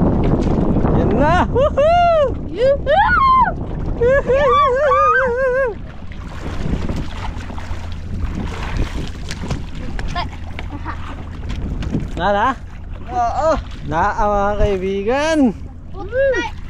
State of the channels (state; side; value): identical; both; correlation 1.00